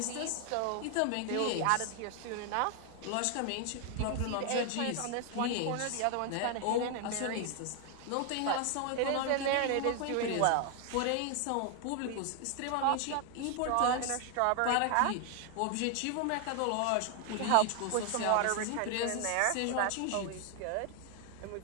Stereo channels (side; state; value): both; different; correlation 0.00